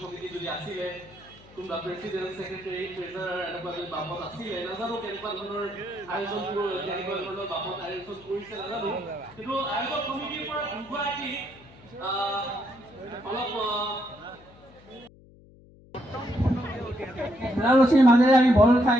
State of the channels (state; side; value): noise; left; hum, 24 dB below the sound